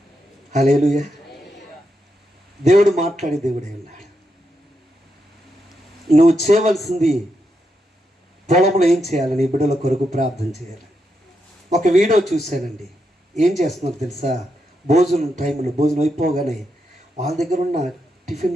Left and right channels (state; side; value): normal; both; correlation 0.83